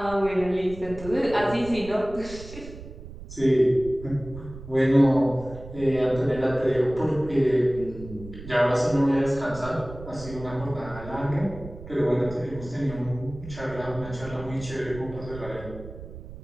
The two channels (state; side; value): noise; right; rumble, 14 dB below the sound